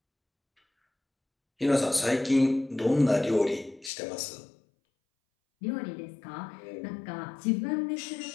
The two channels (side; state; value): right; drops out; at 3.9 s